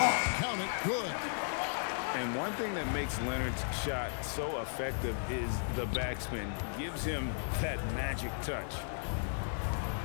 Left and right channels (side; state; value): right; silent; digital silence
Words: count it. Good. And one thing that makes Leonard's shot so effective is the backspin. Gives him that magic touch.